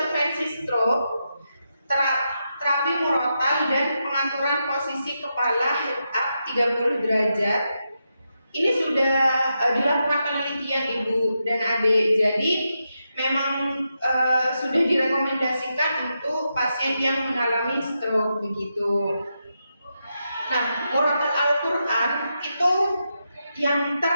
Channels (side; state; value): both; inverted; correlation -0.86